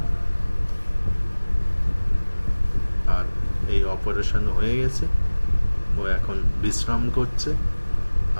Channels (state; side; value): inverted; both; correlation -1.00